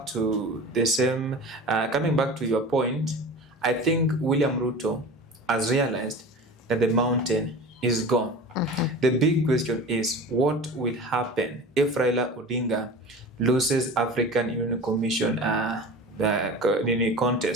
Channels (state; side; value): normal; both; correlation 0.35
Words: to your point, I think William Ruto has realized that the mountain is gone. The big question is, what will happen if Raila Odinga loses African Union Commission the